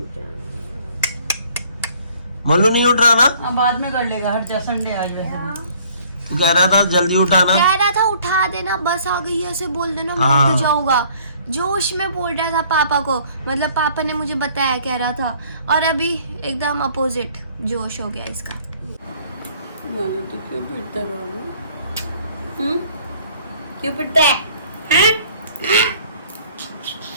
मोलू नहीं उठ रहा ना? अब बाद में कर लेगा, हट जा, संडे आज वैसे भी। तू कह रहा था जल्दी उठाना। कह रहा था उठा देना, बस आ गई है, ऐसे बोल देना, मैं हाँ। उठ जाऊंगा। जोश में बोल रहा था पापा को, मतलब पापा ने मुझे बताया, कह रहा था। और अभी एकदम अपोजिट जोश हो गया इसका। बोलो तो क्यों पिटता है बाबू? क्यों पिटता है? हैं?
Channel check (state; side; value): inverted; both; correlation -0.57